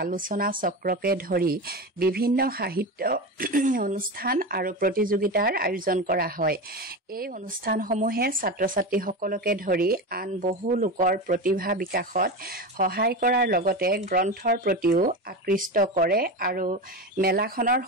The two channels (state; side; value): normal; both; correlation 0.22